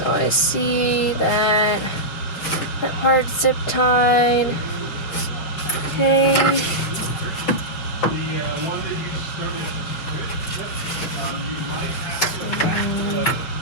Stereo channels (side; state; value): right; late; 6.3 ms